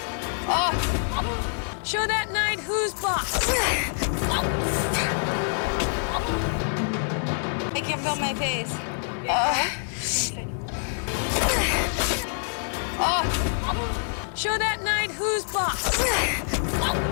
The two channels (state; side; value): silent; right; digital silence